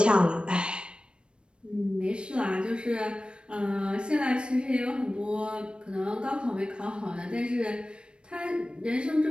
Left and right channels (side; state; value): left; late; 0.055 ms